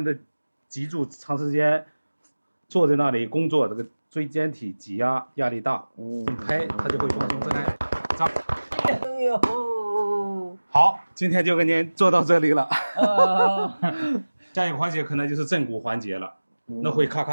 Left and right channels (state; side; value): inverted; both; correlation -1.00